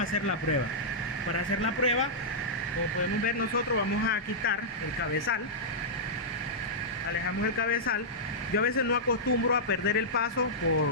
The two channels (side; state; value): both; normal; correlation -0.11